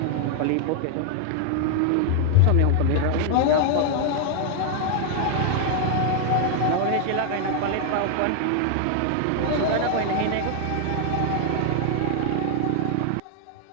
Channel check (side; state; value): both; different; correlation 0.00